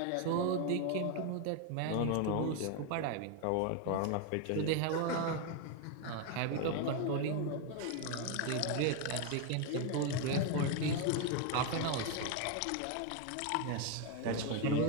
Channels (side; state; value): both; different; correlation 0.01